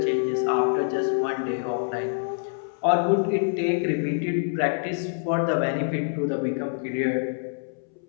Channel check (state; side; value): silent; right; 60 dB below the other